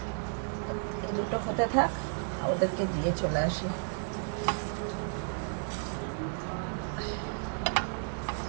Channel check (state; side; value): silent; left; 56 dB below the other